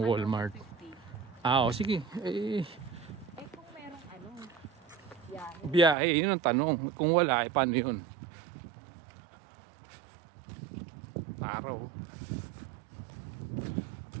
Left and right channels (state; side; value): drops out; left; at 6.0 s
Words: Walmart. O sige. Kung merong biyahe. Biyahe, yun ang tanong. Kung wala, paano yun? Araw.